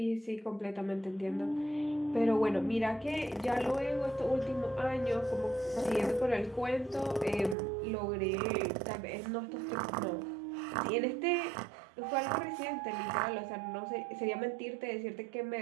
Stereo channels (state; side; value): drops out; left; at 7.6 s